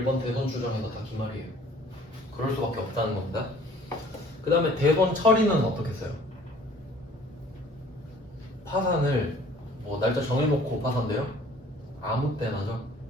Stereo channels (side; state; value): both; normal; correlation 0.53